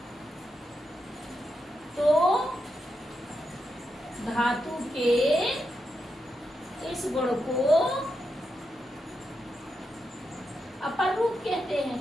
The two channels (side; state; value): both; normal; correlation 0.85